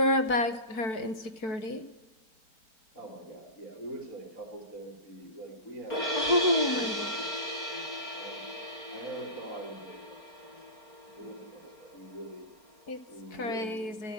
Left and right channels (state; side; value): late; right; 4.4 ms